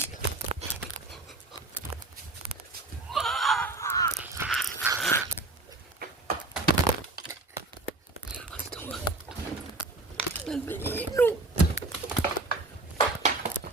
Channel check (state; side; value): quieter; left; 3.1 dB